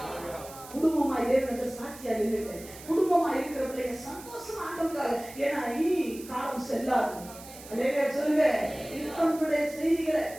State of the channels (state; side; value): noise; right; hiss, 17 dB below the sound